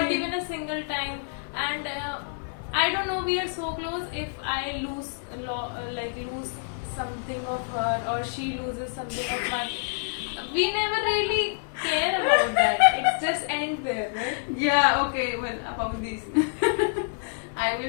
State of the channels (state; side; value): silent; right; digital silence